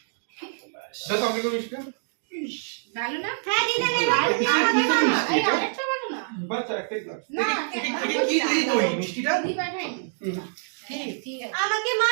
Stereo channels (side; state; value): left; silent; digital silence